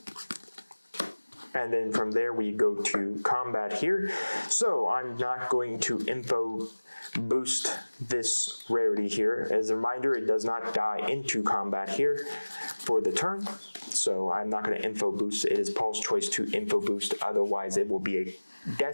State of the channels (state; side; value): inverted; both; correlation -1.00